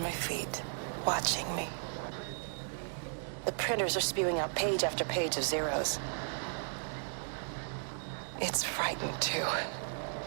my feet, watching me. The printers are spewing out page after page of zeros. It's frightened too.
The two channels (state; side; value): silent; left; digital silence